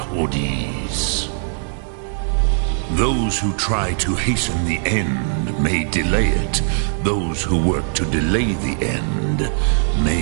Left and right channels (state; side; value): silent; left; 65 dB below the other